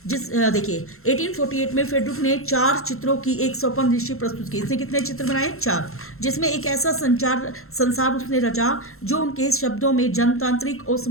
देखिए, 1848 में फ्रेडरिक ने 4 चित्रों की एक स्वप्नदर्शी प्रस्तुत की। इसने कितने चित्र बनाए, 4, जिसमें एक ऐसा संसार उसने रचा जो उनके शब्दों में जनतांत्रिक और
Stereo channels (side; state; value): right; late; 0.62 ms